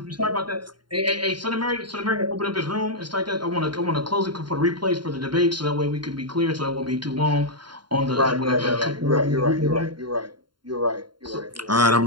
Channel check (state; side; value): late; left; 0.72 ms